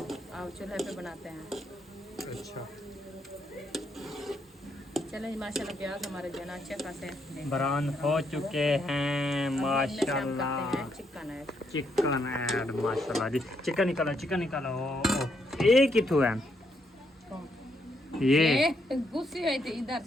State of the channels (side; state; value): both; normal; correlation 0.76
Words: चूल्हे पे बनाते हैं। अच्छा चलो माशाल्लाह प्याज हमारे जो है ना अच्छे खासे ब्राउन हो चुके हैं माशाल्लाह। चिकन है चिकन ऐड माशाल्लाह जी। चिकन निकालो चिकन निकालो। एक ही तो है ये गुस्से हुई थी इधर